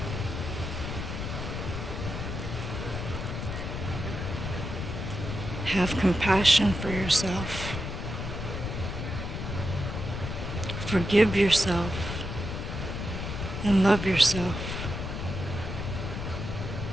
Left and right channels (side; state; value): left; noise; rumble, 5 dB below the sound